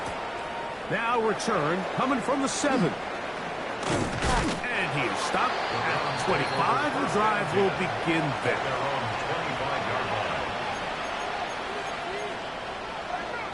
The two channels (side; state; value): both; identical; correlation 1.00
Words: Now return coming from the 7. And he is stopped at the 25. The drive will begin there.